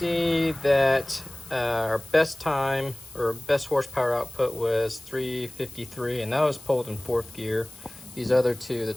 that our best time or best horsepower output was 353, and that was pulled in 4th gear. These other two, the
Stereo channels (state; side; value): noise; left; hiss, 21 dB below the sound